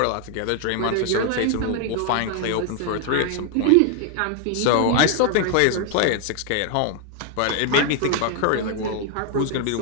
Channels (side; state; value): both; different; correlation 0.00